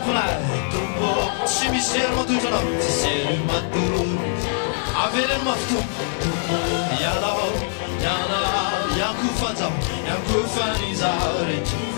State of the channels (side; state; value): right; silent; digital silence